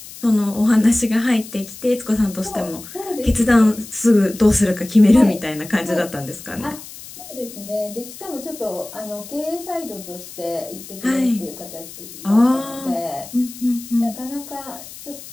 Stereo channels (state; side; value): noise; left; hiss, 15 dB below the sound